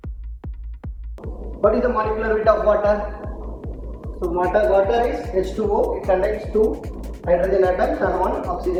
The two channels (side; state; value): both; identical; correlation 1.00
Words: What is the molecular weight of water? So water is H2O. It contains 2 hydrogen atoms and 1